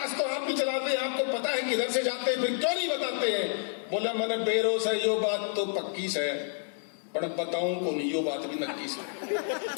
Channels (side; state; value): right; silent; 58 dB below the other